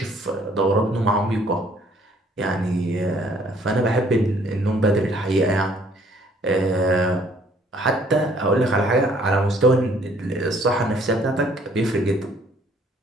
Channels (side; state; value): both; normal; correlation 0.61